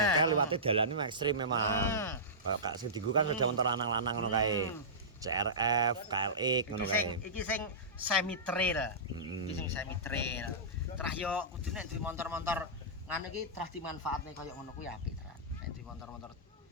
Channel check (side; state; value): both; normal; correlation -0.18